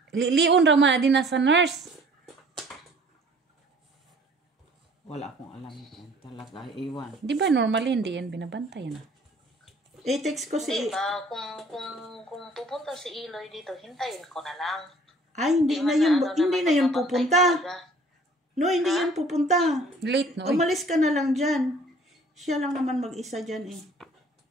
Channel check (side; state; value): both; normal; correlation 0.54